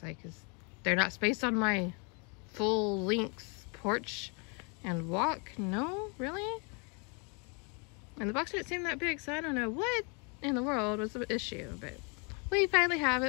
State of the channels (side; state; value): right; quieter; 34.6 dB